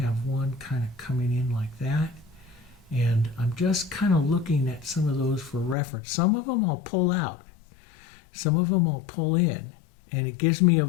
one kind of coming in like that, and I'm just kind of looking at some of those for reference. Some of them I'll pull out, some of them I'll pull in, and it gives me a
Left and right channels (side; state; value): right; drops out; at 5.8 s